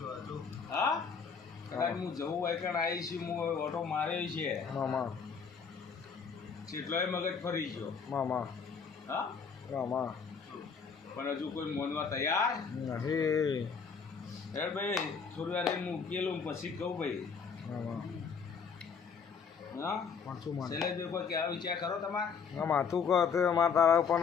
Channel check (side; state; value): right; quieter; 6.0 dB